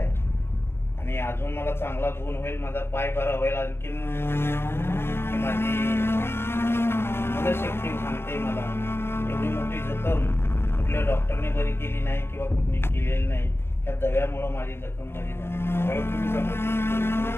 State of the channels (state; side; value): late; right; 0.11 ms